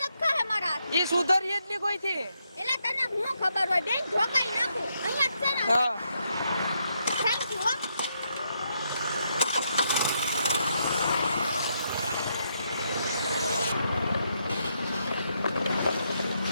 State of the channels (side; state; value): both; inverted; correlation -0.78